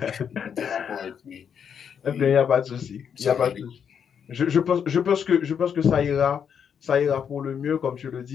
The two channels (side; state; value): right; quieter; 7.6 dB